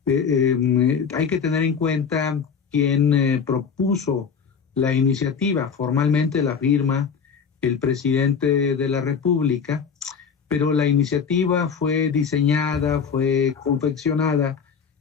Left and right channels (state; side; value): quieter; right; 6.3 dB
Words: Hay que tener en cuenta quién propuso la iniciativa. Formalmente la firma el presidente de la República, pero la iniciativa fue diseñada, fue confeccionada